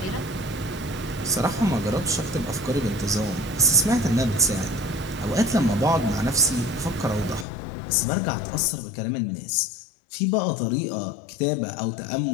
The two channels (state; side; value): drops out; right; at 7.5 s